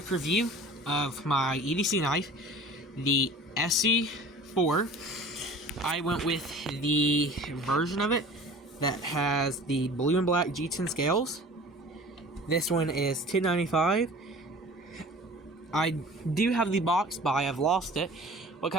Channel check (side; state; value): both; normal; correlation 0.44